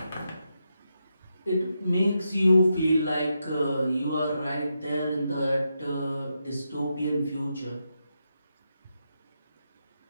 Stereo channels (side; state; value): both; inverted; correlation -0.85